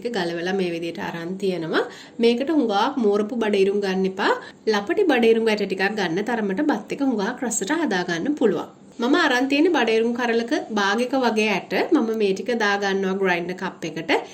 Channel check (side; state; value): both; identical; correlation 1.00